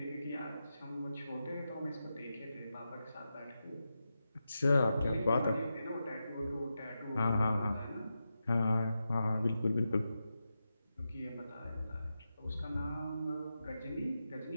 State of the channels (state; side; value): inverted; both; correlation -0.89